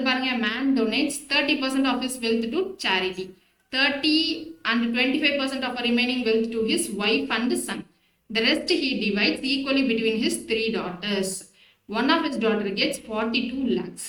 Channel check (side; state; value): both; identical; correlation 1.00